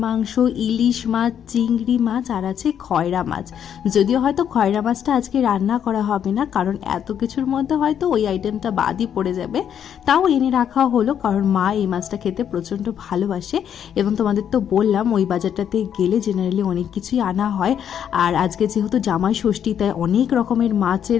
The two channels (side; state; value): right; quieter; 8.9 dB